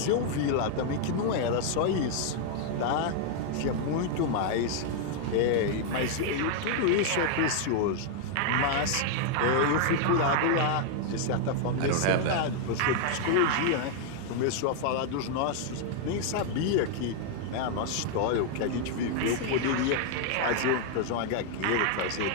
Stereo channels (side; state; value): both; different; correlation 0.00